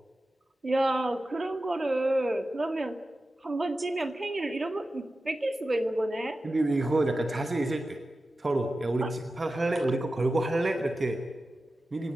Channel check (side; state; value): both; normal; correlation 0.93